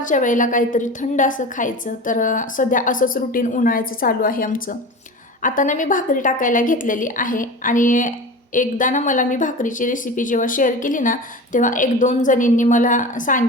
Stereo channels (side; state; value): both; normal; correlation 0.31